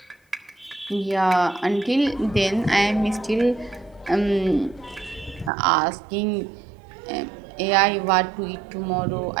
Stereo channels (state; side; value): drops out; left; at 5.5 s